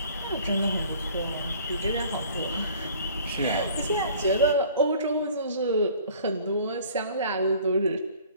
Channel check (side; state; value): both; inverted; correlation -0.51